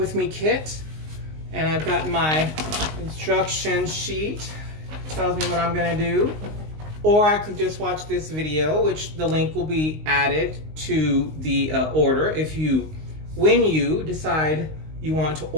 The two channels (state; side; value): late; left; 19 ms